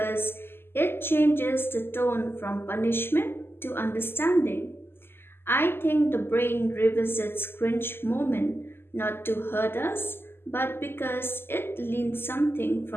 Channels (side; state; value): right; late; 0.11 ms